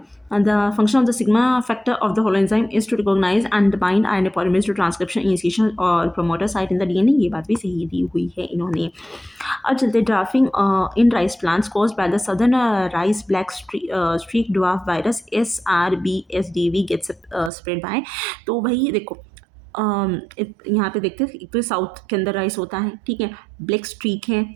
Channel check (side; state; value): left; drops out; at 17.5 s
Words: the function of the sigma factor of the holoenzyme is to recognize and bind RNA polymerase to transcription initiation और promoter site in the DNA। ये बात भी सही दी हुई है इन्होंने। अब चलते drafting in rice plants caused by the southern rice black streak dwarf virus SRBSDV gets spread by। तो वही देखो, यहाँ पे देखते हैं, एक तो साउथ के अंदर राइस होता है, ठीक है, ब्लैक स्ट्रीक है,